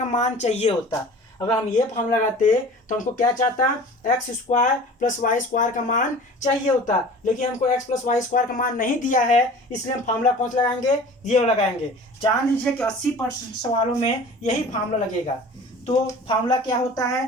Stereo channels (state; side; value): normal; both; correlation 0.42